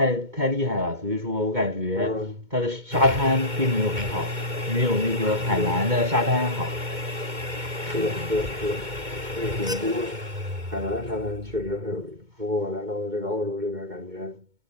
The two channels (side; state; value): left; late; 2.2 ms